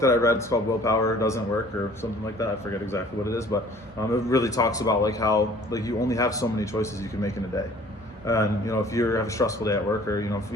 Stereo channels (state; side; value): normal; both; correlation 0.52